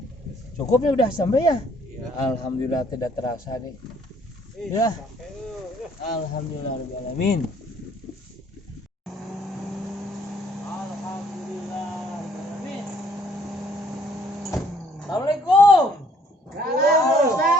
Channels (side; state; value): both; normal; correlation 0.62